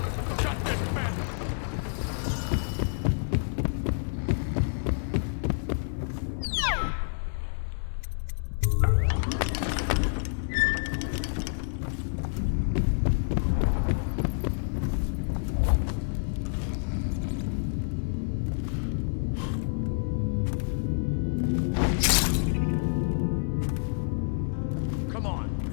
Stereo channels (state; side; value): silent; right; 59 dB below the other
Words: Shut this man. Come on,